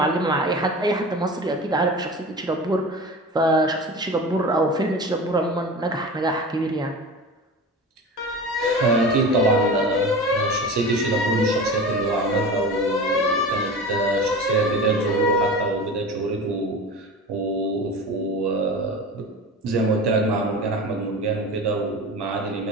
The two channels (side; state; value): both; normal; correlation 0.32